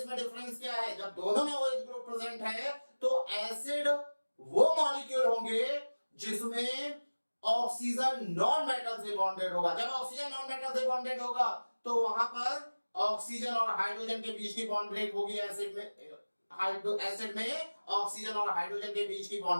में डिफरेंस क्या है, जब दोनों में OH ग्रुप प्रेजेंट है तो एसिड वो मॉलिक्यूल होंगे जिसमें ऑक्सीजन नॉन मेटल से बॉन्डेड होगा। जब ऑक्सीजन नॉन मेटल से बॉन्डेड होगा तो वहां पर ऑक्सीजन और हाइड्रोजन के बीच की बॉन्ड ब्रेक होगी। एसिड में ऑक्सीजन और हाइड्रोजन के बीच की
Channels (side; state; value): both; inverted; correlation -1.00